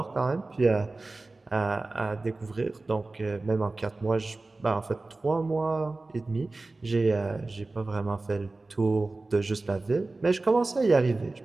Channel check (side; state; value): left; quieter; 3.3 dB